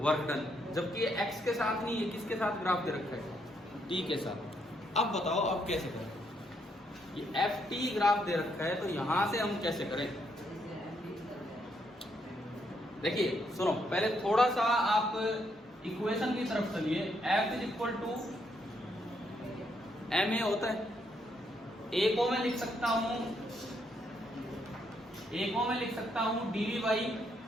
Work done. जबकि ये एक्स के साथ नहीं है, किसके साथ ग्राफ दे रखा है? टी के साथ. अब बताओ अब कैसे करें? ये एफ टी ग्राफ दे रखा है, तो यहां से हम कैसे करें? देखिए सुनो, पहले थोड़ा सा आप इक्वेशन की तरफ चलिए. F is equal to M A होता है. ए को मैं लिख सकता हूं, डीवी बाई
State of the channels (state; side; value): normal; both; correlation 0.75